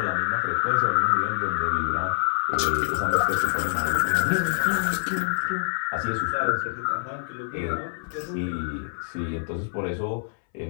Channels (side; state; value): right; silent; 61 dB below the other